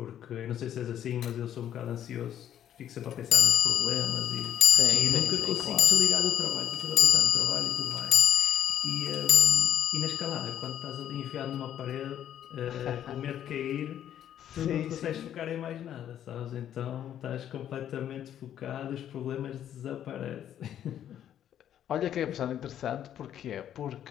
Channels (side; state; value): right; quieter; 10.5 dB